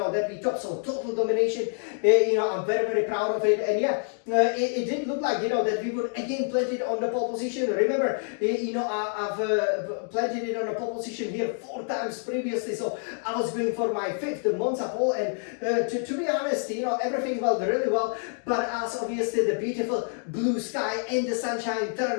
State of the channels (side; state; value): right; silent; 55 dB below the other